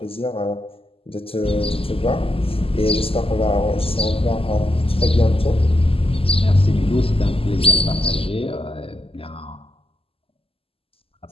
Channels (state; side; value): late; right; 0.27 ms